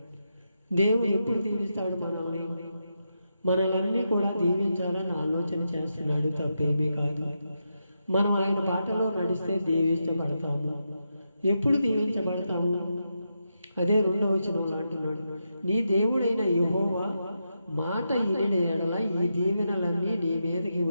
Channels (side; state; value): both; inverted; correlation -0.86